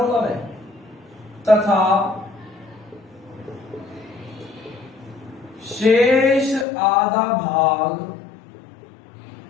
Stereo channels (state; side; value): drops out; right; at 6.7 s